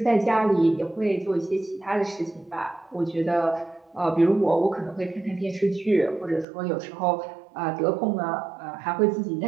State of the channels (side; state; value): left; drops out; at 6.5 s